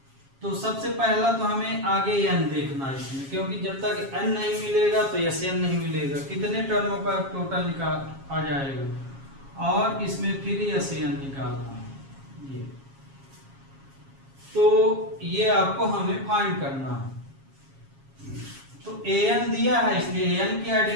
तो सबसे पहला तो हमें आगे एन देखना है इसमें, क्योंकि जब तक एन नहीं मिलेगा तो एस एन नहीं मिलेगा, कितने टर्मों का टोटल निकाल आ जाएगा, और इसमें फिर एस एन निकालना है ये, तो ये आपको हमें फाइंड करना है। तो ए एन दिया है इसलिए ए एन की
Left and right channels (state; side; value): late; left; 7.3 ms